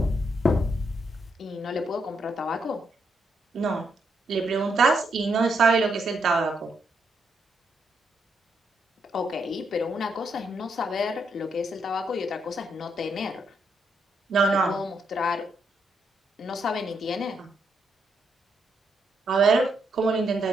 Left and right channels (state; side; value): normal; both; correlation 0.78